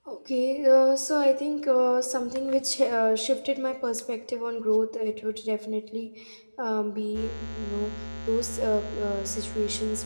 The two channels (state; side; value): inverted; both; correlation -1.00